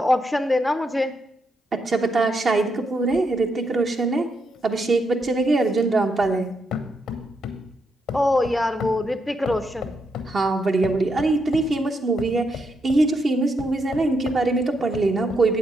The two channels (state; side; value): normal; both; correlation 0.80